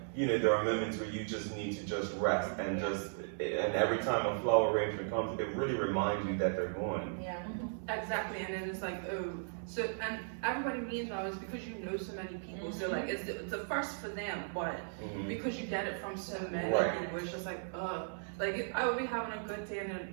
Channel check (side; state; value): left; silent; 53 dB below the other